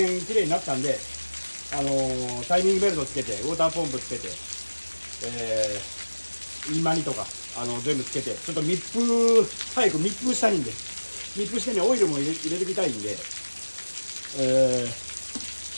綺麗になったんで、タイミングベルトつけて、ウォーターポンプつけて、インマニとか、全部つけて、ちょっと早く密封したいんで、密封してね、オイルも入れてみたいんで、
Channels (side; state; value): both; inverted; correlation -1.00